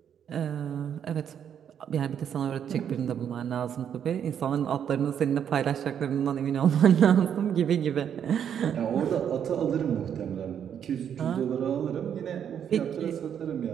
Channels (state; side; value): quieter; left; 8.7 dB